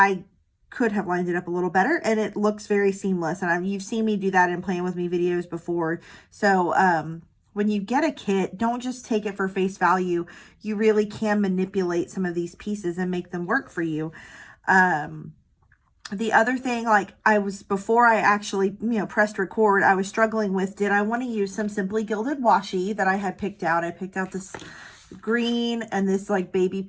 could have lined it up a little better, and it looks very seamless. And you've seen me do that in Playing With Me videos before. So when you get a kit, don't just take it for face value. You really can manipulate some of these pieces and make them work for you. The other thing, like before I actually, pressed record, I was struggling with, did I want to use some Simply Gilded washi that I had picked out? I picked out this green and this like baby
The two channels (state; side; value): identical; both; correlation 1.00